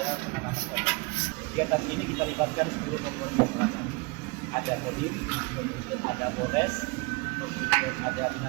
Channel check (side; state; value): left; quieter; 29.0 dB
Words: penanaman pohon. Kegiatan ini kita libatkan seluruh komponen masyarakat. Ada Kodim, kemudian ada Polres, kemudian ada